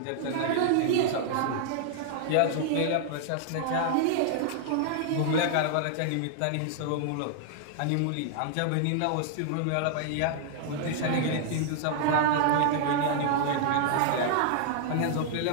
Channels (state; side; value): different; both; correlation -0.01